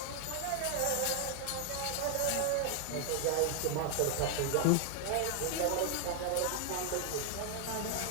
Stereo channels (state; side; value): different; both; correlation 0.00